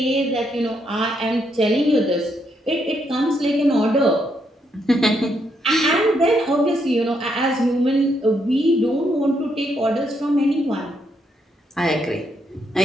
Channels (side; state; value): both; normal; correlation 0.77